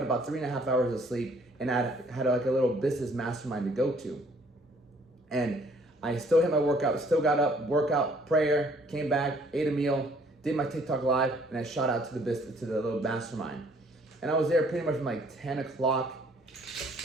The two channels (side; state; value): both; normal; correlation 0.60